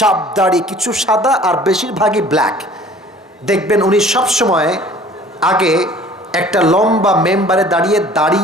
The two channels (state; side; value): normal; both; correlation 0.49